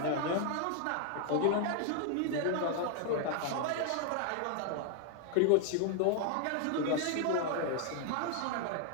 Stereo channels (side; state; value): both; different; correlation 0.00